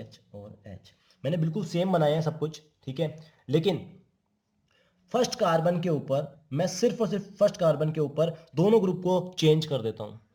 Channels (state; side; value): identical; both; correlation 1.00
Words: और H। मैंने बिल्कुल सेम बनाया है सब कुछ, ठीक है। लेकिन फर्स्ट कार्बन के ऊपर मैं सिर्फ और सिर्फ फर्स्ट कार्बन के ऊपर दोनों ग्रुप को चेंज कर देता हूं।